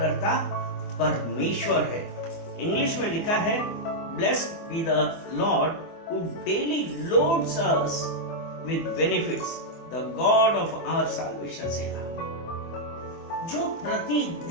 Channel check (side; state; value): right; late; 24 ms